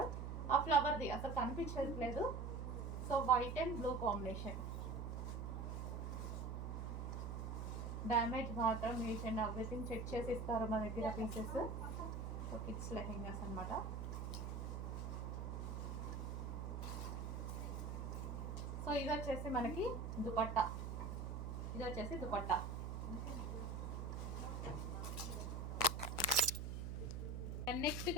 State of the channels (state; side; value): noise; right; hum, 4 dB below the sound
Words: ఆ ఫ్లవర్ది అసలు కనిపించట్లేదు. So white and blue combination. Damage మాత్రం ఈచ్ అండ్ ఎవ్రీథింగ్ చెక్ చేసి ఇస్తారు మా దగ్గర పీసెస్. సో కిడ్స్ లెహెంగాస్ అనమాట. సో ఇది వచ్చేసి మనకి దుపట్టా, నెక్స్ట్